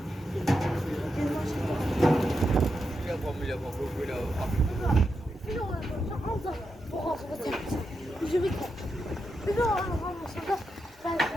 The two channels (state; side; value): normal; both; correlation 0.86